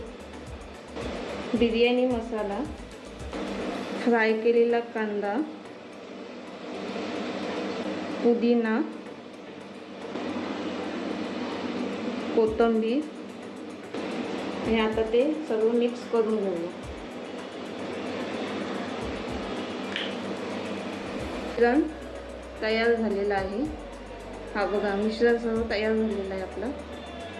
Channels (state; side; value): identical; both; correlation 1.00